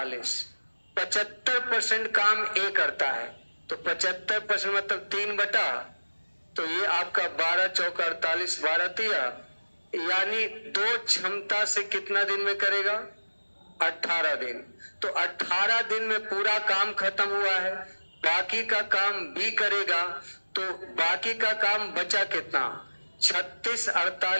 75% काम ए करता है, तो 75% मतलब 3 बटा, तो ये आपका 12 चौका 48, 12 तिया, यानी 2 क्षमता से कितना दिन में करेगा? 18 दिन। तो 18 दिन में पूरा काम खत्म हुआ है, बाकी का काम बी करेगा, तो बाकी का काम बचा कितना? 36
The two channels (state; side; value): inverted; both; correlation -1.00